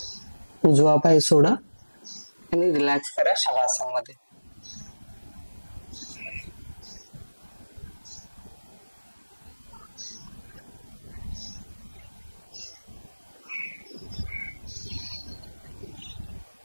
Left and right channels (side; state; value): both; inverted; correlation -1.00